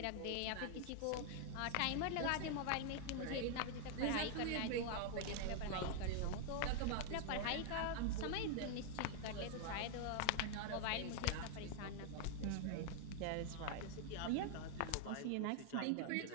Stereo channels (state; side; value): different; both; correlation 0.00